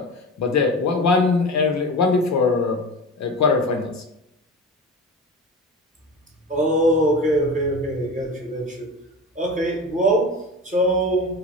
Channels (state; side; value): normal; both; correlation 0.30